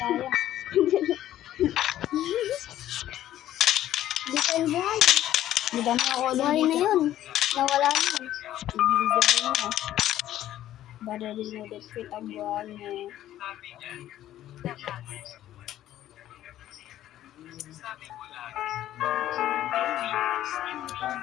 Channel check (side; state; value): right; quieter; 12.8 dB